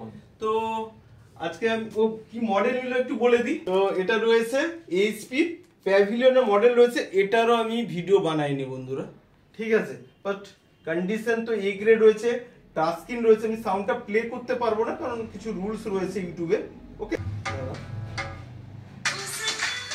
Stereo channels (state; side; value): identical; both; correlation 1.00